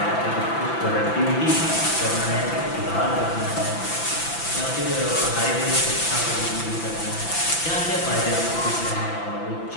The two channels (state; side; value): late; right; 5.9 ms